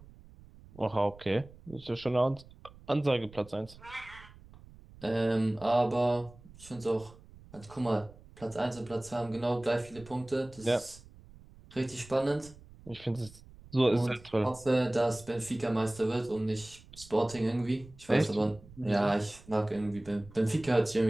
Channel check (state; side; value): noise; right; rumble, 21 dB below the sound